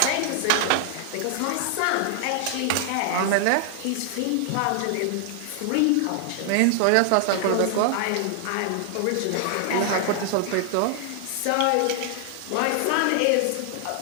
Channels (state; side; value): different; both; correlation 0.00